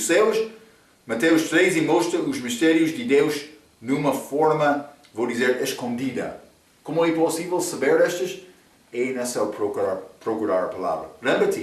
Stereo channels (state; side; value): identical; both; correlation 1.00